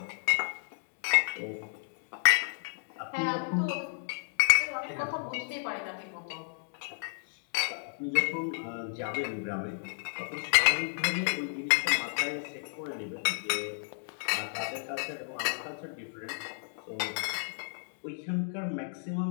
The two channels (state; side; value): silent; right; digital silence